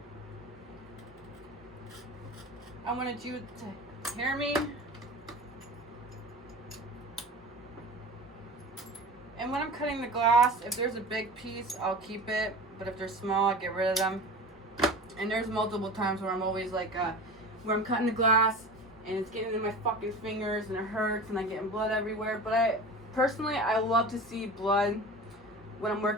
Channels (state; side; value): normal; both; correlation 0.34